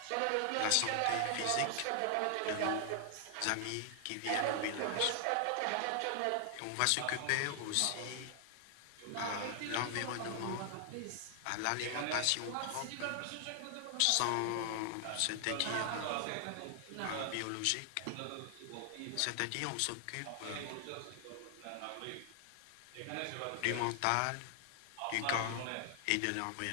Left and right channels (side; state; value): both; different; correlation 0.00